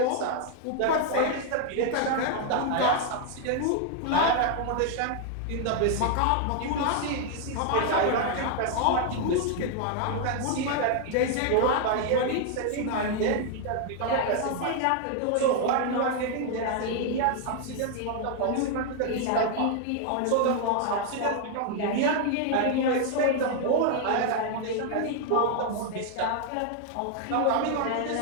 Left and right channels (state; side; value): different; both; correlation 0.00